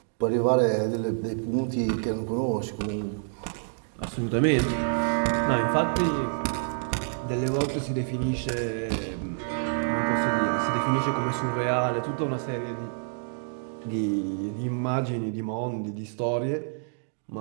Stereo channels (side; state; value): left; silent; digital silence